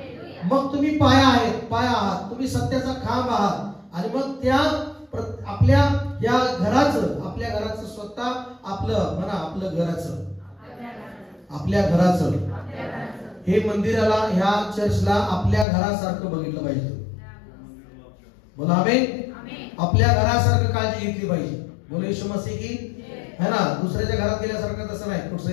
मग तुम्ही पाया आहेत, पाया आहात, तुम्ही सत्याचा खांब आहात. आणि मग त्या आपल्या या घराचं, आपल्या घराचं स्वतः आपलं म्हणा, आपलं घराचं, आपल्या घराचं हे मंदिराला, ह्या चर्चला आपल्या घरासारखं बघितलं पाहिजे. बोला आमेन. आपल्या घरासारखं काळजी घेतली पाहिजे. बोलो येशू मसीह की है ना. दुसऱ्याच्या घरात गेल्यासारखं तसं नाही.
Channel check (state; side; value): drops out; right; at 15.7 s